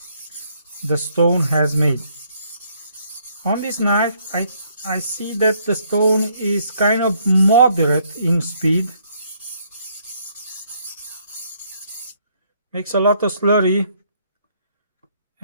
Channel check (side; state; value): both; inverted; correlation -0.69